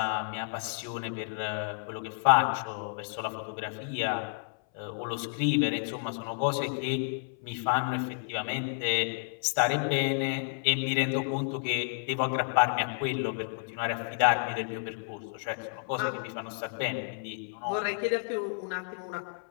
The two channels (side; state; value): right; silent; 57 dB below the other